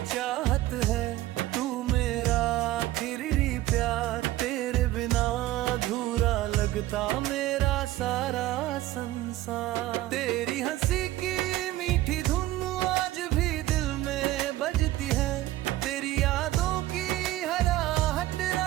चाहत है, तू मेरा आखिरी प्यार। तेरे बिना अधूरा लगता मेरा सारा संसार। तेरी हंसी की मीठी धुन आज भी दिल में बजती है। तेरी यादों की हर आहट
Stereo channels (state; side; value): quieter; left; 15.8 dB